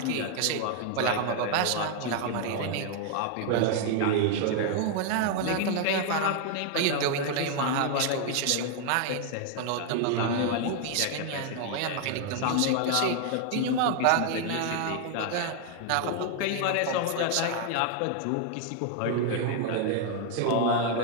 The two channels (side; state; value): both; different; correlation 0.00